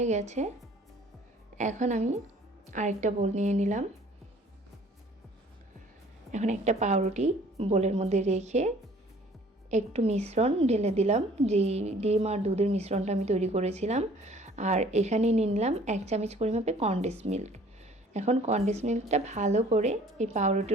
গেছে। এখন আমি আরেকটা বোল নিয়ে নিলাম। এখন একটা পাউরুটি বোলের মধ্যে রেখে একটু মিশ্রণ ঢেলে দিলাম, যেই ডিম আর দুধের মিশ্রণটা আমি তৈরি করেছিলাম। আর এখানে নিয়ে নিলাম 1 চামচ পরিমাপে কনডেন্স মিল্ক। এখন কনডেন্স মিল্কটা ভালো করে এই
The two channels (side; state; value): both; normal; correlation 0.54